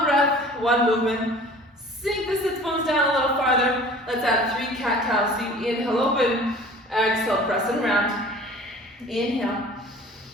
breath, one movement. Sink the sits bones down a little farther. Let's add 3 cat-cows. So you inhale, open. Exhale, press and round. Inhale.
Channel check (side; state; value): both; normal; correlation 0.45